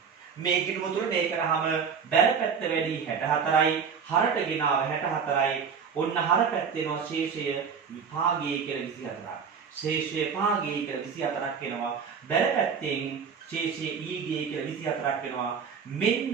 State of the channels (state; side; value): quieter; left; 6.3 dB